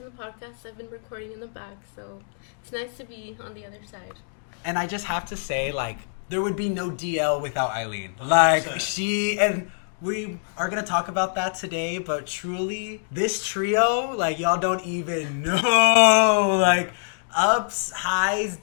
the podcast. I've been recording in the back, so it's nice to be on the other side. And I just have to say, there would be no DL without Eileen. 100%. We are going to talk about that today, but truly, this trio, y'all don't even know. Ups, highs,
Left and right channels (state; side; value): silent; right; digital silence